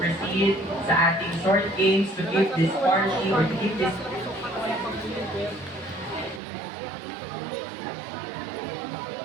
sa ating short games to keep this party or to keep this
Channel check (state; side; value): drops out; left; at 6.4 s